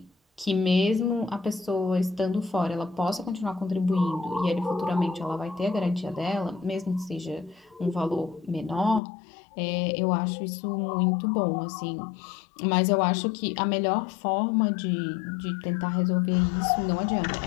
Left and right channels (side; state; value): right; drops out; at 9.0 s